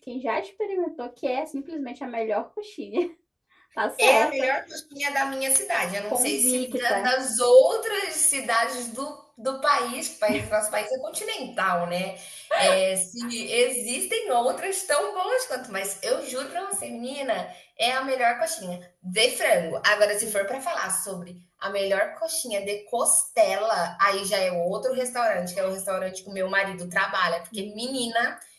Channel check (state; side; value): identical; both; correlation 1.00